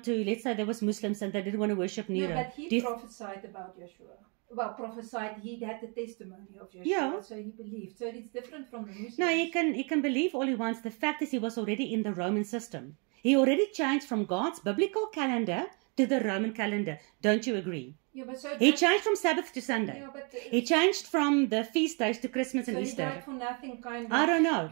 to, let's say there was Muslims and they didn't want to worship Nero. No, but he prophesied about Yeshua. Well, prophesied, he had the testimony of Yeshua, so he believed. So it's different from the Muslims. No, he can believe all he wants. The fact is, he was already in the Roman system. He already changed from God's biblical calendar to the Roman calendar. Don't you agree? Yeah, but so he changed from Sabbath to Sunday. Yeah, but he changed from the feast days to Christmas and Easter. He died for nothing, kind of. I don't know.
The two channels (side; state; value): left; quieter; 35.2 dB